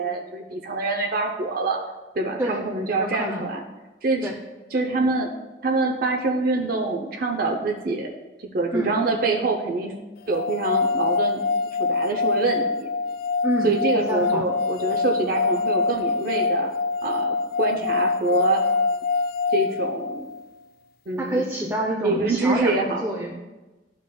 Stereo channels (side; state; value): both; normal; correlation -0.11